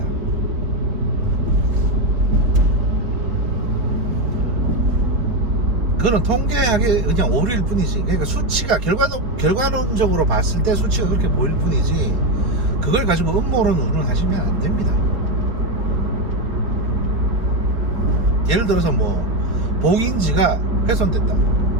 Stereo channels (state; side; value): late; left; 3.8 ms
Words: 그거는 통계학의 그냥 오류일 뿐이지. 그러니까 수치가 결과론적으로 봤을 때 수치가 그렇게 보일 뿐이지, 그걸 가지고 음모론 운운하시면 안 됩니다. 예를 들어서 뭐 봉인지가 훼손됐다.